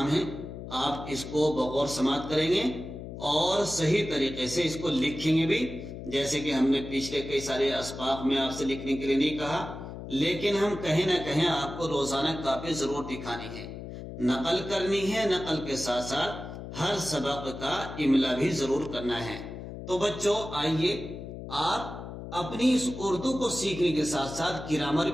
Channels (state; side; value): noise; left; hum, 10 dB below the sound